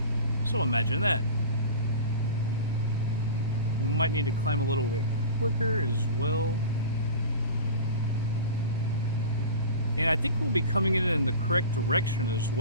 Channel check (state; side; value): inverted; both; correlation -0.36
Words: So imagine that. We might need to climb a little bit quicker as well. And I think we'll be coming in the correct direction as